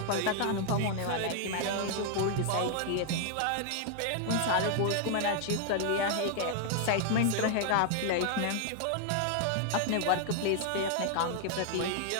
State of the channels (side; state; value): both; different; correlation 0.00